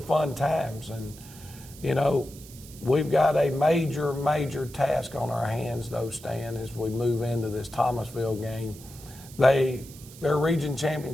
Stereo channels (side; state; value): right; noise; hiss, 19 dB below the sound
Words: fun times, and, you know, we've got a major task on our hands, though, Stan, as we move into this Thomasville game. Their region